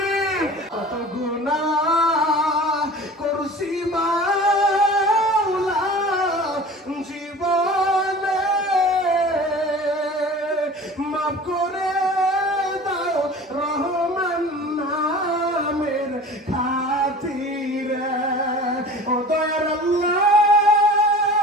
কত গুনাহ করছি মাওলা জীবনে, মাফ করে দাও রহমান নামের খাতিরে। ও দয়ার আল্লাহ,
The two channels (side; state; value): both; normal; correlation 0.40